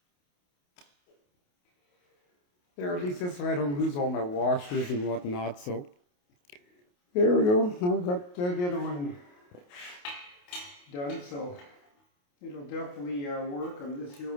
There, at least this way I don't lose all my washers and whatnot, so there we go. I've got the other one done, so it'll definitely work on this here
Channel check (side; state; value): right; late; 28 ms